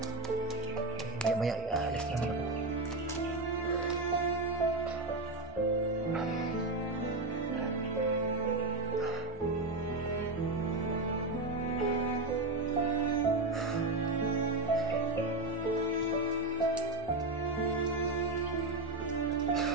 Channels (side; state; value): left; quieter; 3.0 dB